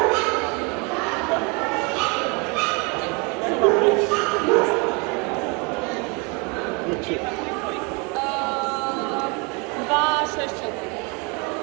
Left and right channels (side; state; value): left; quieter; 30.9 dB